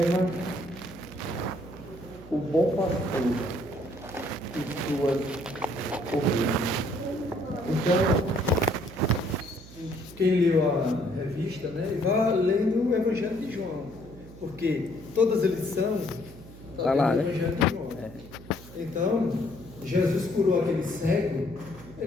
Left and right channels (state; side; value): noise; right; hum, 18 dB below the sound